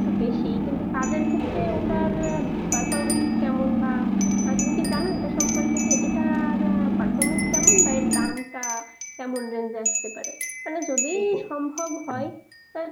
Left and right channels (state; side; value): identical; both; correlation 1.00